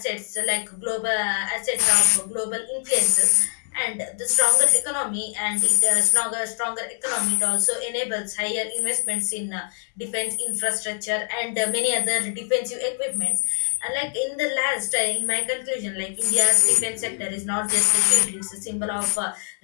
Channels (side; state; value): right; silent; 58 dB below the other